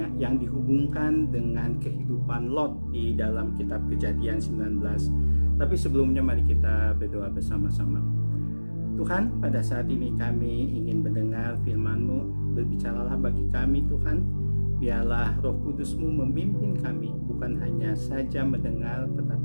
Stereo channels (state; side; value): inverted; both; correlation -1.00